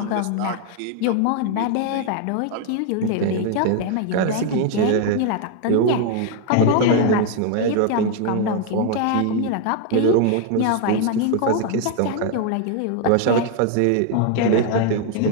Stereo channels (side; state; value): both; different; correlation 0.01